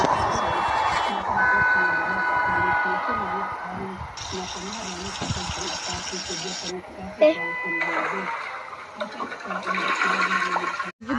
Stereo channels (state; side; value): identical; both; correlation 1.00